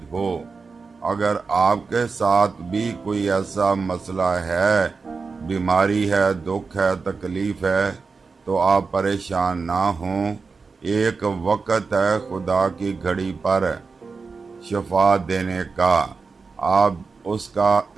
ہو۔ اگر آپ کے ساتھ بھی کوئی ایسا مسئلہ ہے، بیماری ہے، دکھ ہے، تکلیف ہے، تو آپ پریشان نہ ہوں۔ ایک وقت ہے خدا کی گھڑی پر شفا دینے کا، آپ اس کا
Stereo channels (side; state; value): left; quieter; 4.6 dB